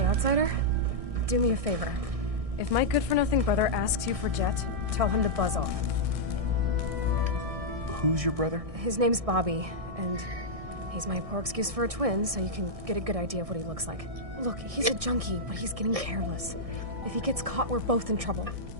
outsider. Do me a favor. If my good-for-nothing brother asks you for Jet, tell him to buzz off. Who's your brother? His name's Bobby, and he's my poor excuse for a twin, so you can get a good idea of what he looks like. Look, he's a junkie, but he's getting careless. If he gets caught, we're both in trouble.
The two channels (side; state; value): left; late; 1.6 ms